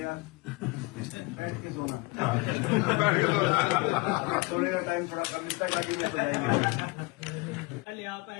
यार, बैठ के सोना। सोने का टाइम थोड़ा कम, इसका टाइम हो जाएगा। पहले आप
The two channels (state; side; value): quieter; right; 25.3 dB